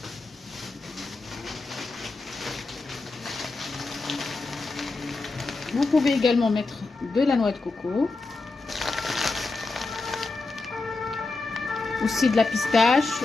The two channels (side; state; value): right; quieter; 3.6 dB